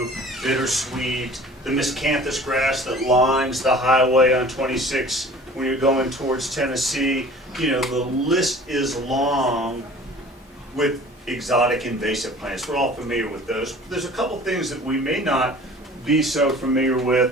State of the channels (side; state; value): both; normal; correlation 0.46